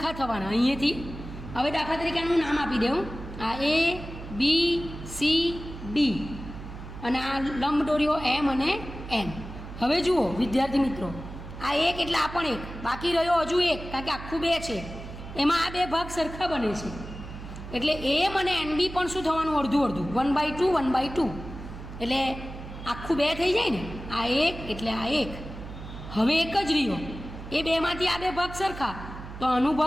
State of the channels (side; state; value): right; noise; hum, 12 dB below the sound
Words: થવાના અહીંયાથી. હવે દાખલા તરીકે આનું નામ આપી દઉં આ A B C D અને આ લંબ દોર્યો M અને N. હવે જુઓ વિદ્યાર્થી મિત્રો આ 1 એટલે આ પણ 1 બાકી રહ્યો હજુ 1 કારણ કે આખું 2 છે એમાં આ 2 ભાગ સરખા બને છે એટલે M અને NB પણ શું થવાનું અડધું અડધું 1/2 1/2 એટલે આખું 2 થઈ જાય ને આ 1 એટલે આ 1 હવે 1 જ રહ્યો એ 2માંથી આ 2 ભાગ સરખા તો આનો